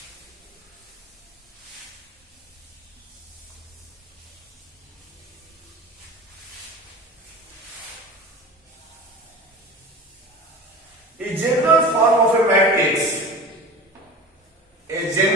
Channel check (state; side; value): normal; both; correlation 0.34